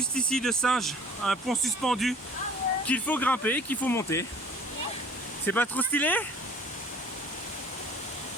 ici de singe, un pont suspendu qu'il faut grimper, qu'il faut monter. C'est pas trop stylé?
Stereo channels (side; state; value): both; normal; correlation 0.50